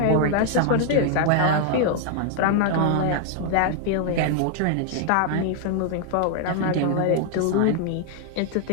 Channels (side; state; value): both; different; correlation 0.00